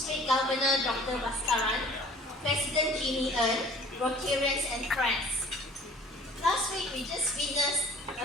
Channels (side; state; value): both; normal; correlation 0.50